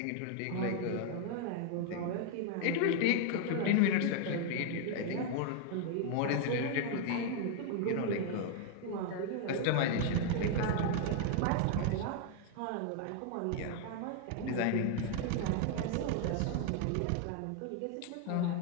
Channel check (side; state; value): both; different; correlation 0.00